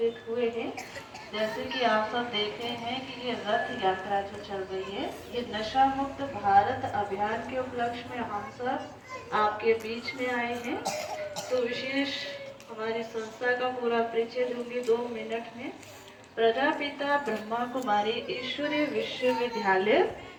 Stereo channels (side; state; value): both; identical; correlation 1.00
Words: हुए हैं। जैसे कि आप सब देख रहे हैं कि ये रथ यात्रा जो चल रही है, ये नशा मुक्त भारत अभियान के उपलक्ष्य में हम सब आपके बीच में आए हैं। तो विशेष हमारी संस्था का पूरा परिचय दूंगी 2 मिनट में। प्रजापिता ब्रह्मा कुमारी ईश्वरीय विश्वविद्यालय